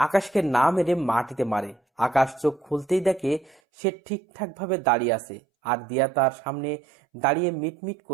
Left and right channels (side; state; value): left; drops out; at 3.6 s